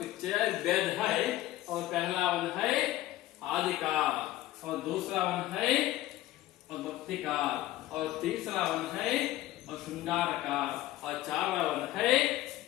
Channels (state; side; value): quieter; right; 15.4 dB